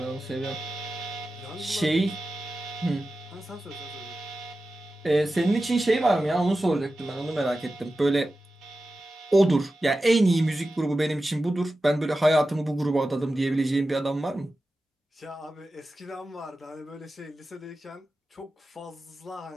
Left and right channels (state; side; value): normal; both; correlation 0.93